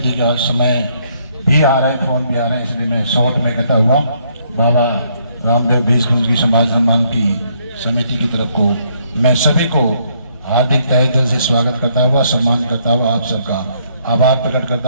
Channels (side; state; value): both; inverted; correlation -0.70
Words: का समय भी आ रहा है, फोन भी आ रहे हैं, इसलिए मैं शॉर्ट में कहता हुआ बाबा रामदेव भीष्म की समाज सम्मान की समिति की तरफ को मैं सभी को हार्दिक तहे दिल से स्वागत करता हुआ, सम्मान करता हुआ आप सबका आभार प्रकट करता